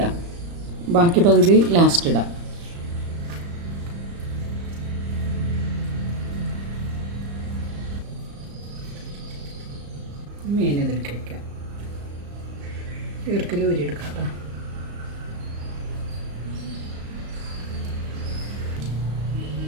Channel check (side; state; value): left; late; 35 ms